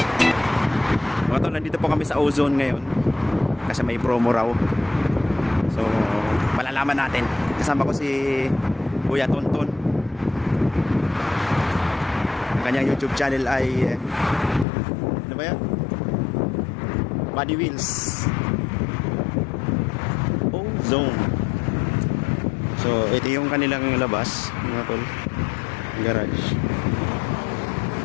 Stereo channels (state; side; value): drops out; right; at 14.7 s